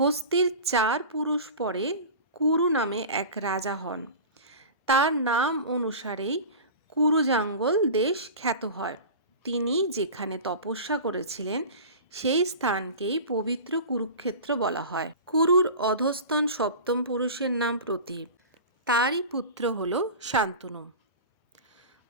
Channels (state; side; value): inverted; both; correlation -0.34